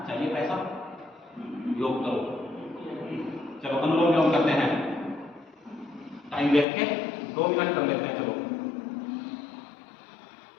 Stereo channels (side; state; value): right; drops out; at 6.7 s